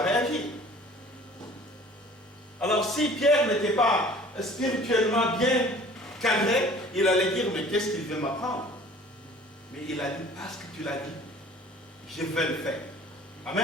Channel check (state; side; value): normal; both; correlation 0.48